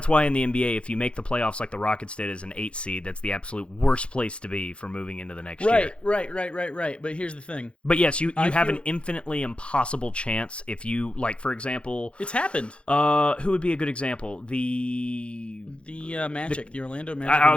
why in the NBA, if you make the playoffs like the Rockets did as an 8 seed, that's the absolute worst place to be for moving into the next year. Right. But here's the thing. But yes, you have an infinitely impossible chance if you, like, for example... It's happened. Who would be a good example? The Magic, the Orlando Magic. I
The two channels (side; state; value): right; late; 0.058 ms